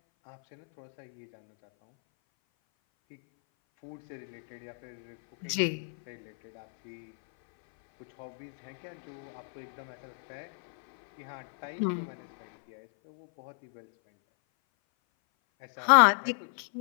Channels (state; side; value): silent; right; 57 dB below the other